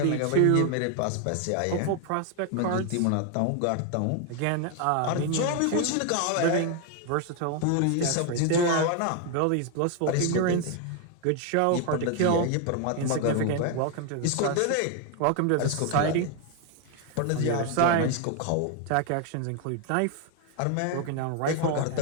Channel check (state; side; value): different; both; correlation 0.01